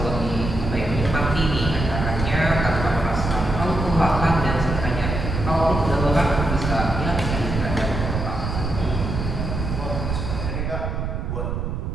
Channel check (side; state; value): right; noise; rumble, 3 dB below the sound